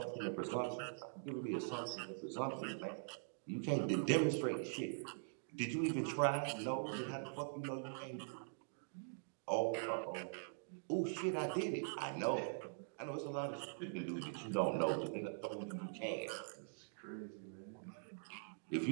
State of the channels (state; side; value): silent; left; digital silence